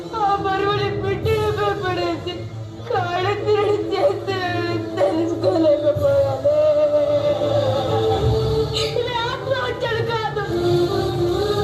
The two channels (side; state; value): both; identical; correlation 1.00